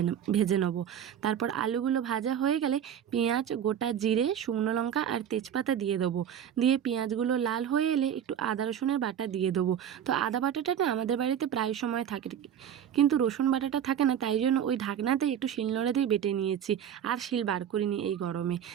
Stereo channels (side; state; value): left; quieter; 9.3 dB